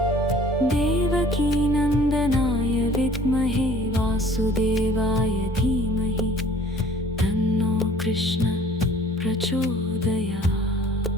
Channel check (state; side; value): normal; both; correlation 0.52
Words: देवकीनन्दनाय विद्महे वासुदेवाय धीमहि तन्नो कृष्ण प्रचोदयात्।